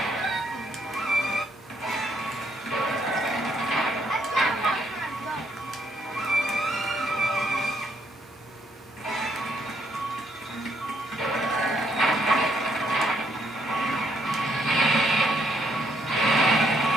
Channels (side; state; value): both; normal; correlation 0.72